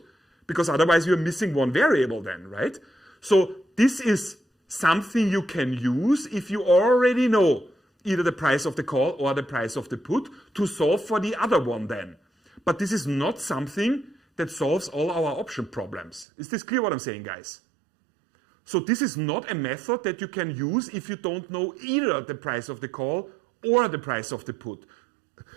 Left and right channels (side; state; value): left; drops out; at 16.2 s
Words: Because otherwise you're missing one variable then, right? So this is something you can use if you already know either the price of the call or the price of the put to solve for the other one then. But this is not something that solves all our option problems. Is this clear what I'm saying, guys? So this is not a method that you can use if you don't know either the price of the call or the price of the put.